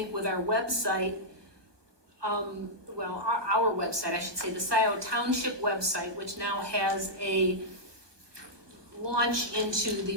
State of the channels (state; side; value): late; left; 1.2 ms